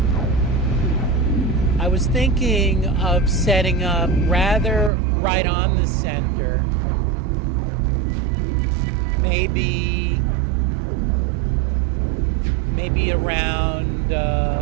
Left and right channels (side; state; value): left; drops out; at 4.9 s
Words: I was thinking of setting up rather right on the center, maybe around